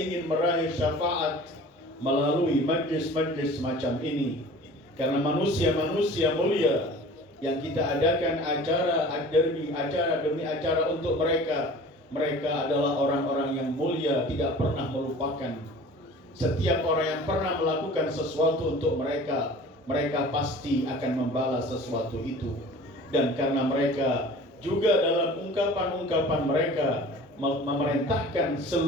meraih syafaat melalui majlis-majlis semacam ini. Karena manusia-manusia mulia yang kita adakan acara demi acara untuk mereka, mereka adalah orang-orang yang mulia, tidak pernah melupakan. Setiap orang yang pernah melakukan sesuatu untuk mereka, mereka pasti akan membalas sesuatu itu. Dan karena mereka juga dalam ungkapan-ungkapan mereka memerintahkan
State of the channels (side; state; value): both; normal; correlation 0.43